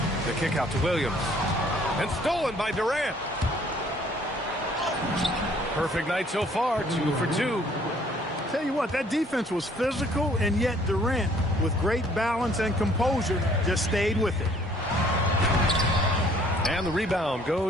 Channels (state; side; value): normal; both; correlation 0.59